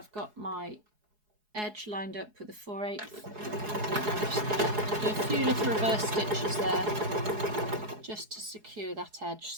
got my edge lined up with a 4/8. I'm just going to do a few little reverse stitches there just to secure that edge,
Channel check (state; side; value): late; left; 4.7 ms